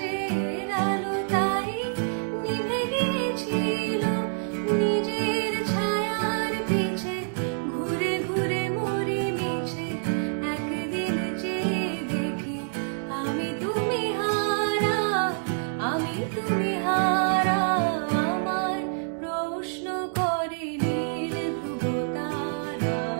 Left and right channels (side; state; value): left; silent; digital silence